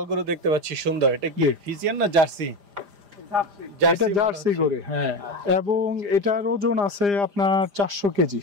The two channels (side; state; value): left; late; 5.0 ms